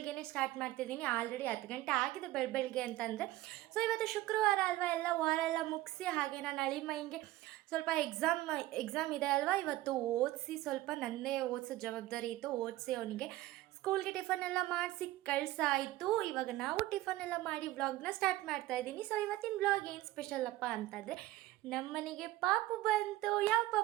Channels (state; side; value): quieter; left; 16.8 dB